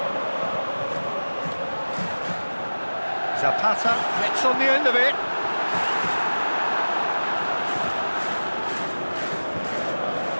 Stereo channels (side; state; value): both; inverted; correlation -1.00